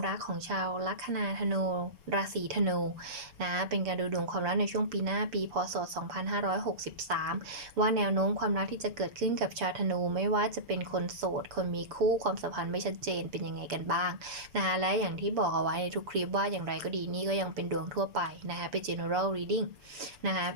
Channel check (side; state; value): left; late; 6.9 ms